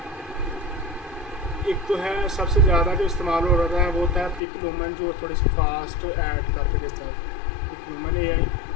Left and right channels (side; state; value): right; drops out; at 4.4 s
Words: एक तो है सबसे ज़्यादा जो इस्तेमाल हो रहा है वो होता है पिकलुमन, जो थोड़ी सी फास्ट ऐड करके देता है पिकलुमन AI।